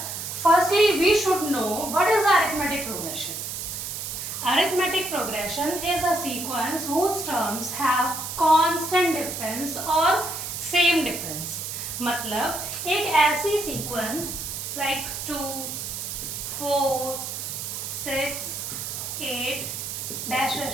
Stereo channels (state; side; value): noise; right; hiss, 6 dB below the sound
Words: firstly we should know what is arithmetic progression. Arithmetic progression is a sequence whose terms have constant difference or same difference. मतलब एक ऐसी sequence like 2, 4, 6, 8 dash dash